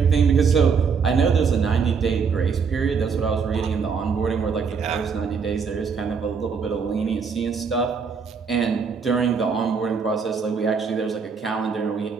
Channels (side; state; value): left; quieter; 5.8 dB